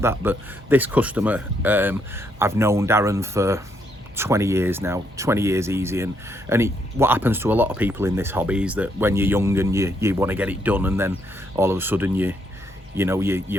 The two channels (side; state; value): both; normal; correlation 0.74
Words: that. But this customer, I've known Darren for 20 years now, 20 years easy, and what happens to a lot of people in this hobby is that when you're young and you want to get it done, and then all of a sudden you